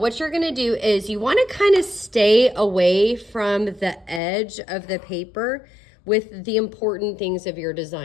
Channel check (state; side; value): drops out; right; at 4.2 s